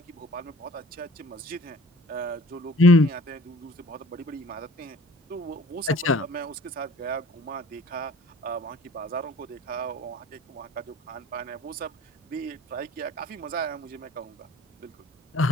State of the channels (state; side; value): normal; both; correlation 0.49